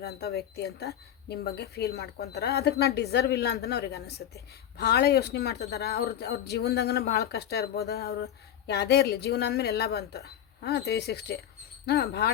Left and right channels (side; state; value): right; quieter; 10.4 dB